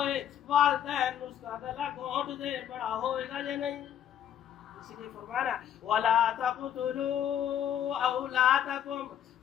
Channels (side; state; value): right; quieter; 10.0 dB